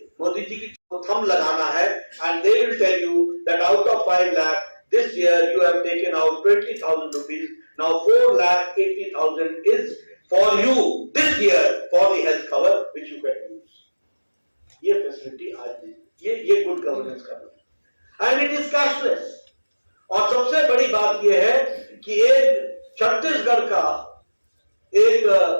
मोदी जी की थंब लगाना है and they will tell you that out of 5 lakh this year you have taken out 20,000 rupees. Now 4,80,000 is for you this year for the health cover which you can use. ये फैसिलिटी आज ये गुड गवर्नेंस का है एंड इट इज कैशलेस. और सबसे बड़ी बात यह है कि एक छत्तीसगढ़ का एक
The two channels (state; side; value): inverted; both; correlation -1.00